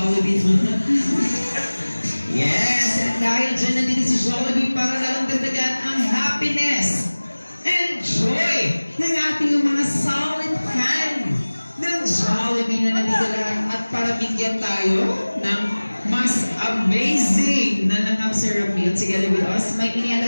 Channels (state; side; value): inverted; both; correlation -1.00